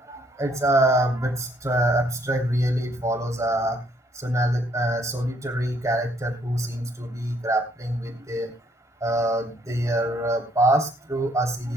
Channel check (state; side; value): normal; both; correlation 0.67